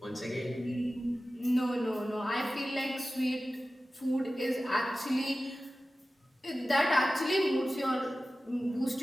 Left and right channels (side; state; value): both; normal; correlation 0.95